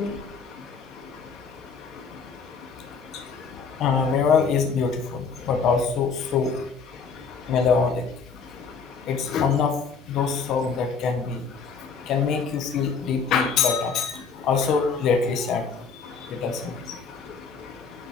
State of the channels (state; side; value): quieter; right; 5.4 dB